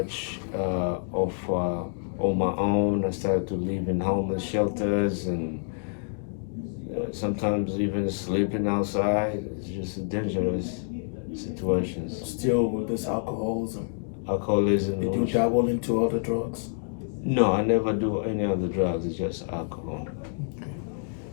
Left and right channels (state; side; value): silent; right; digital silence